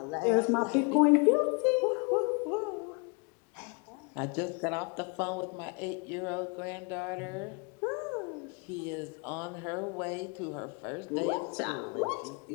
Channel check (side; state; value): right; quieter; 34.1 dB